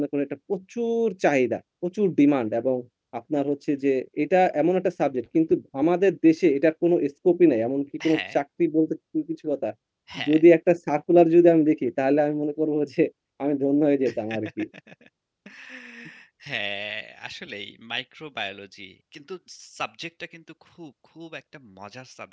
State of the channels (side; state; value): both; identical; correlation 1.00